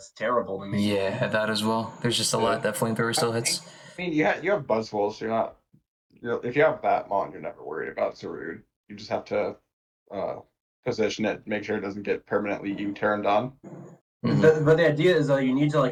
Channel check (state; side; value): identical; both; correlation 1.00